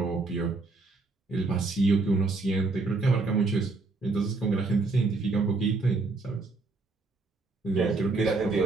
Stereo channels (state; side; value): quieter; left; 3.6 dB